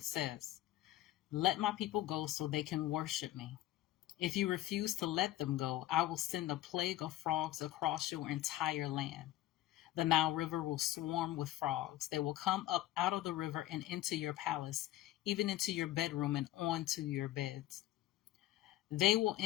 says. Let my people go so they can worship me. If you refuse to let them go, I will send a plague of frogs across your entire land. The Nile River will swarm with frogs. They will come up out of the river and into your palace, even into your bedroom and onto your beds. They will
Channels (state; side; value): quieter; right; 14.6 dB